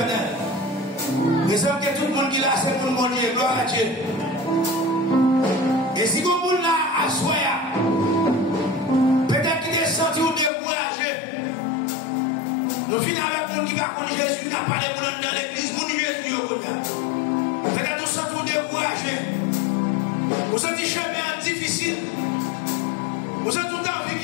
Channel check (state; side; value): drops out; right; at 10.5 s